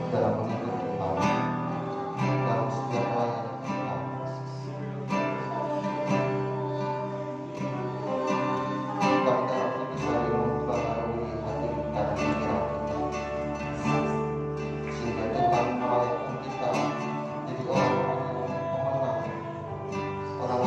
dalam mengikut Tuhan dalam setiap pelayanan kita. Kami harap ini bisa mempengaruhi hati dan pikiran kita, sehingga Tuhan melakukan kita jadi orang-orang yang pemenang,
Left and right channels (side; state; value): both; identical; correlation 1.00